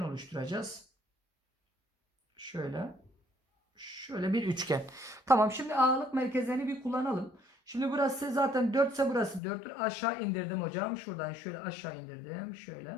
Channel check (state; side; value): drops out; right; at 9.4 s